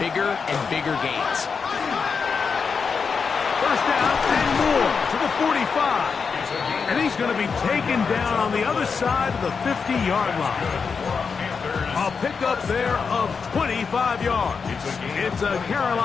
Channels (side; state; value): right; quieter; 5.5 dB